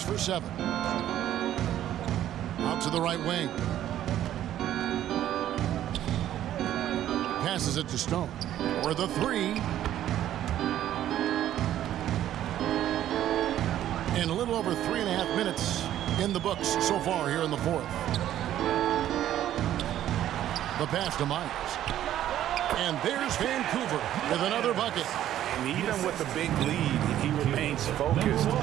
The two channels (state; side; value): quieter; left; 12.0 dB